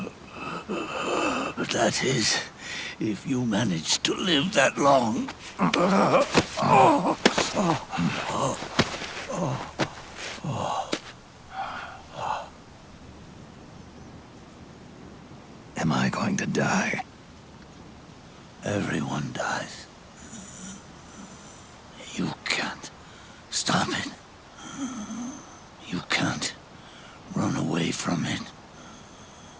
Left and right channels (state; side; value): identical; both; correlation 1.00